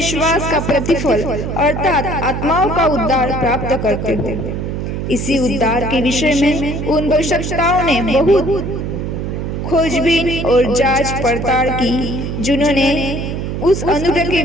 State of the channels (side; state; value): right; noise; hum, 4 dB below the sound